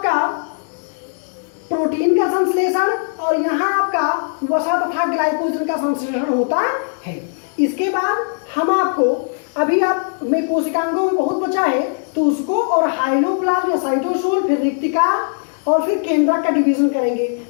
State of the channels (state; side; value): silent; right; digital silence